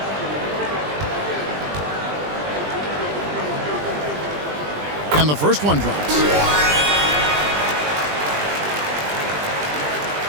And the first one drops.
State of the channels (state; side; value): late; left; 20 ms